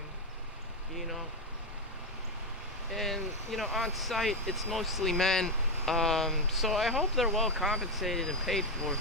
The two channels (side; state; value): both; normal; correlation 0.07